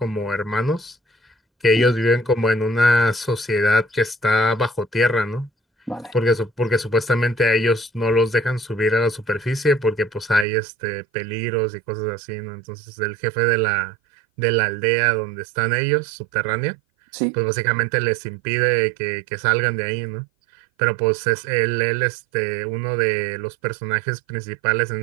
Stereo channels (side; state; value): left; drops out; at 10.5 s